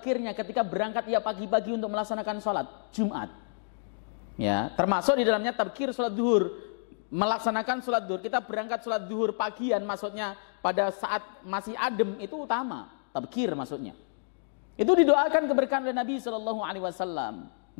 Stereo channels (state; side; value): silent; right; digital silence